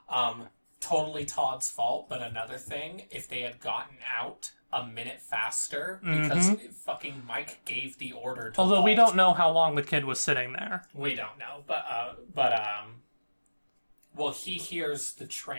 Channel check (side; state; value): both; inverted; correlation -1.00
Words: Totally Todd's fault, but another thing, if they had gotten out a minute faster, because fucking Mike gave the order to Although Walt. we don't know how long the kid was sitting there. We don't know, well, he hears the